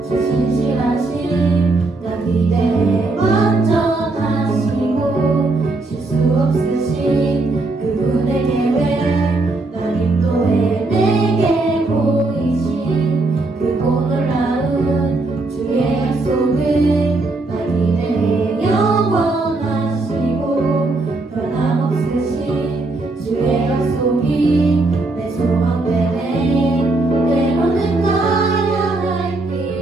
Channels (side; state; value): left; quieter; 3.2 dB